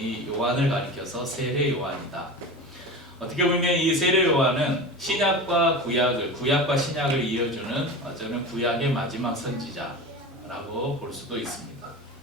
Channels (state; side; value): normal; both; correlation 0.29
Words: 요한을 가리켜서 세례 요한이다. 어떻게 보면 이 세례 요한은 신약과 구약과 신약을 이어주는 저는 구약의 마지막 선지자라고 볼 수도 있습니다.